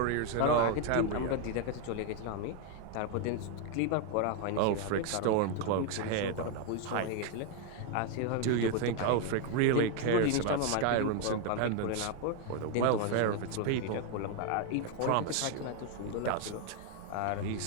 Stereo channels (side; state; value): both; different; correlation 0.01